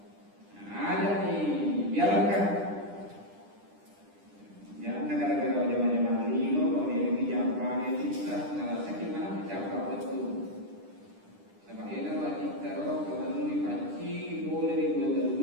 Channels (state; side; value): late; left; 10 ms